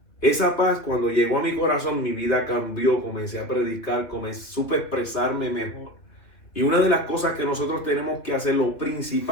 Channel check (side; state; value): right; late; 3.0 ms